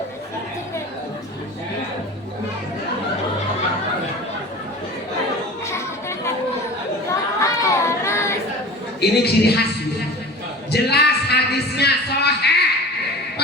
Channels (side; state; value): both; normal; correlation 0.38